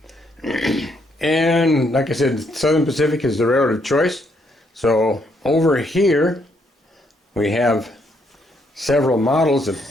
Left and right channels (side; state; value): both; normal; correlation 0.73